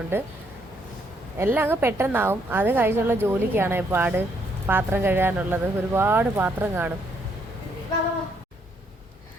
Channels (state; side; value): normal; both; correlation 0.72